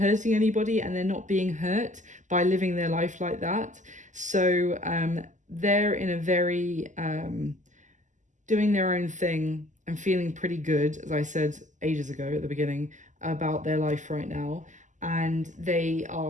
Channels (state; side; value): late; left; 0.36 ms